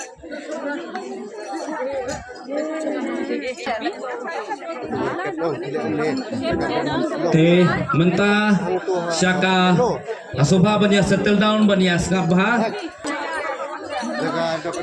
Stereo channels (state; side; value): identical; both; correlation 1.00